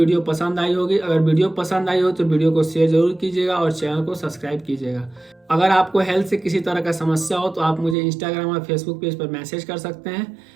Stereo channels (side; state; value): left; drops out; at 8.0 s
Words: पसंद आई होगी। अगर वीडियो पसंद आई हो तो वीडियो को शेयर जरूर कीजिएगा और चैनल को सब्सक्राइब कीजिएगा। अगर आपको हेल्थ से किसी तरह का समस्या हो तो आप मुझे इंस्टाग्राम और फेसबुक पेज पर मैसेज कर सकते हैं।